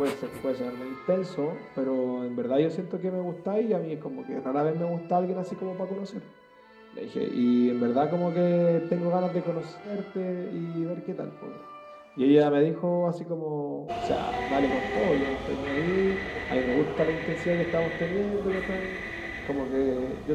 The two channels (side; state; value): both; identical; correlation 1.00